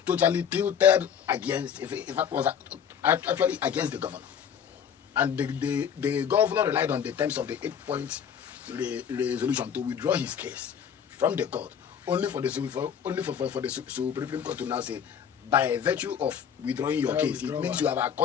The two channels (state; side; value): quieter; right; 8.0 dB